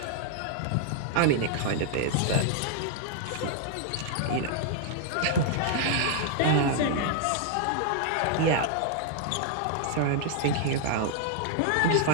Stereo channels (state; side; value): different; both; correlation -0.01